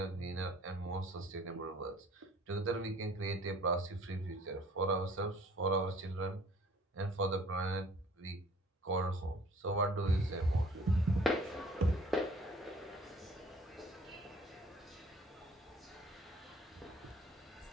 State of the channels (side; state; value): both; normal; correlation 0.53